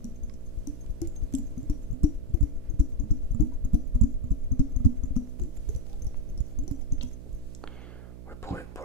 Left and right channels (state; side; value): noise; right; hum, 13 dB below the sound